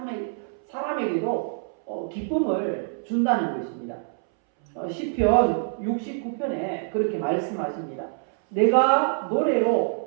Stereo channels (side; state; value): left; silent; 61 dB below the other